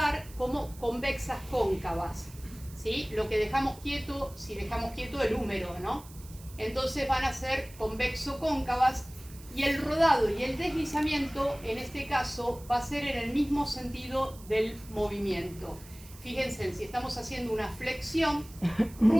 como convexas cóncavas, ¿sí? Lo que dejamos quieto, si dejamos quieto el húmero, ¿no? Entonces van a ser convexo-cóncavas y el rodado y el deslizamiento en este caso va a ser en el mismo sentido del movimiento. Fíjense, si estamos haciendo una flexión,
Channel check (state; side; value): noise; right; hiss, 20 dB below the sound